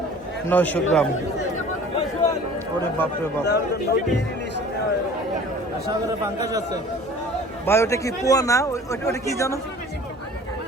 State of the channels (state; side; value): normal; both; correlation 0.46